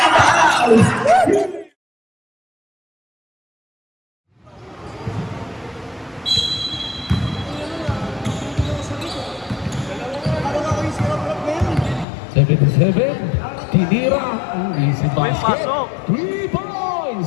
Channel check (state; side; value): drops out; right; at 12.1 s